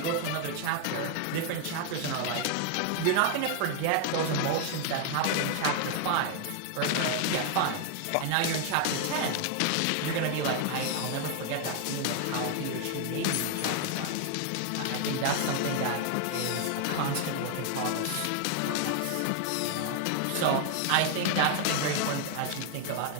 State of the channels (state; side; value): different; both; correlation 0.00